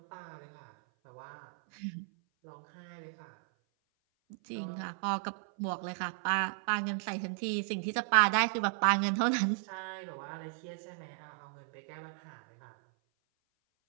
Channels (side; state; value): left; silent; 54 dB below the other